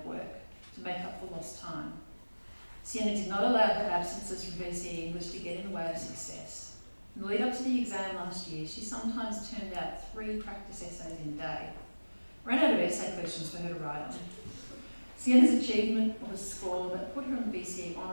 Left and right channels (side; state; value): both; inverted; correlation -1.00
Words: work to make up for lost time. Sienna did not allow her absences from VCE English to get in the way of success. In the lead up to the exam last year, she sometimes turned out 3 practice essays in a day. Ran out of essay questions for her to write on. Sienna's achievement of a score that put her on the VCE